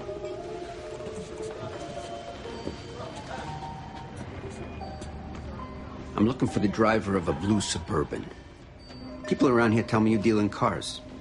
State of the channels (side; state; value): both; identical; correlation 1.00